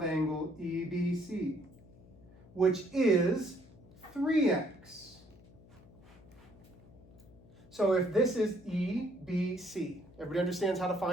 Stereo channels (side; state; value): left; noise; hum, 23 dB below the sound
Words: angle EBC, which is 3x. So if this is EBC, everybody understands how to